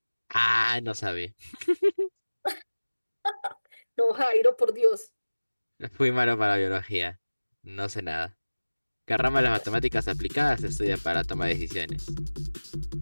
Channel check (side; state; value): both; inverted; correlation -1.00